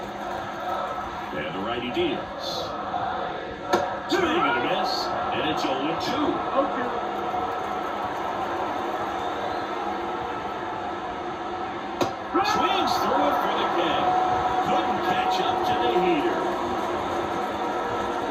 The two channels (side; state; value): right; noise; hum, 28 dB below the sound